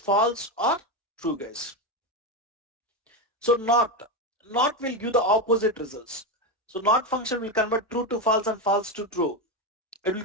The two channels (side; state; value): both; normal; correlation 0.12